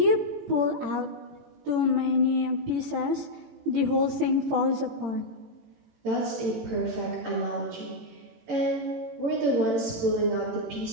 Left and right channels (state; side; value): late; left; 18 ms